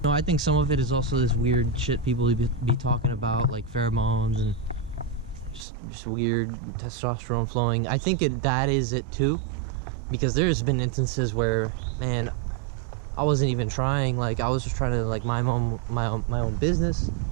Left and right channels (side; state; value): left; drops out; at 5.7 s